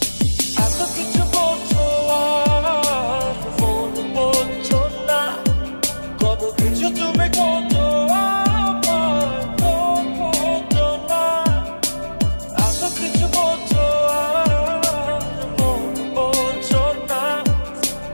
এত কিছু বলছো আর ফোন বলছো না, কত কিছু তুমি করছো না। এত কিছু বলছো আর ফোন বলছো না,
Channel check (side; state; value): both; inverted; correlation -1.00